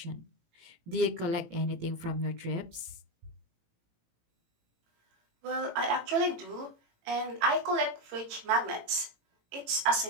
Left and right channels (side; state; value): left; late; 18 ms